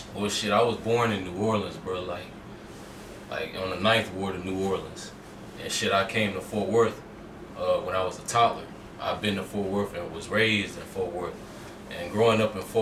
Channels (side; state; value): both; identical; correlation 1.00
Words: Well, shit, I was born in New Orleans, bro. Like on the ninth ward of New Orleans, and shit, I came to Fort Worth when I was a toddler. I've been to Fort Worth and was raised in Fort Worth, and growing up in